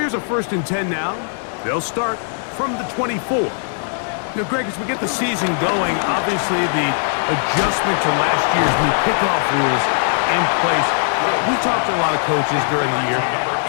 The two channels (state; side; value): silent; right; digital silence